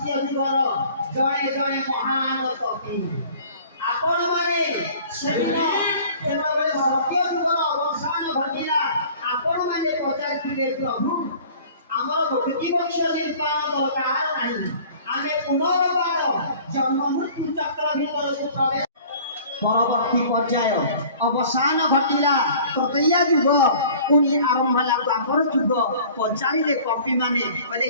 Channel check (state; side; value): inverted; both; correlation -0.48